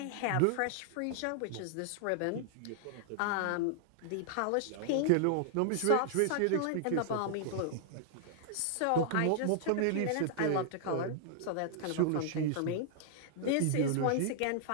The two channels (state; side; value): different; both; correlation -0.01